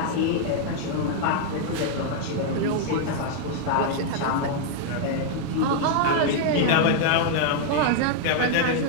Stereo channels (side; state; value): both; different; correlation 0.00